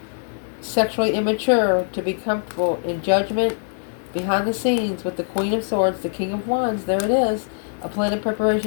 sexually immature, to be comfortable in judgment, behind the scenes with the Queen of Swords, the King of Wands. There it is. A plan of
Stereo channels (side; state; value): right; silent; digital silence